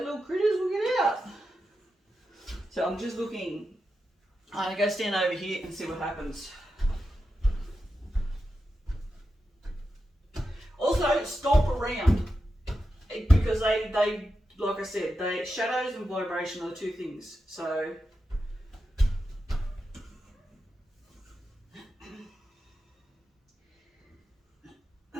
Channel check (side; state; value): both; normal; correlation 0.89